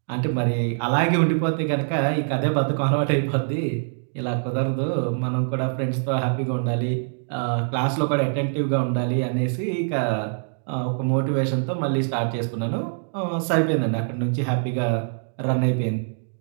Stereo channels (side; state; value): left; silent; digital silence